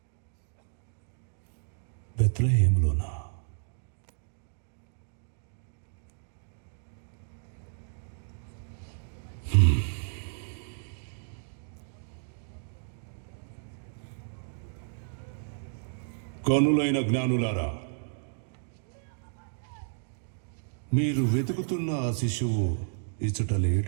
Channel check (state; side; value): silent; left; digital silence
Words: బెత్లెహేములోనా? కనులైన జ్ఞానులారా, మీరు వెతుకుతున్న ఆ శిశువు ఇచుట